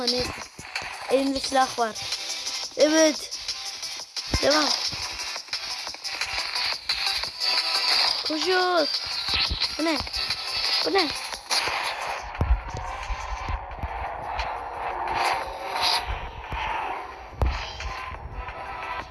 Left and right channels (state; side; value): identical; both; correlation 1.00